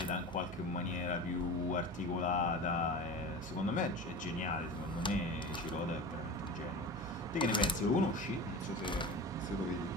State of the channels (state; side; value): normal; both; correlation 0.32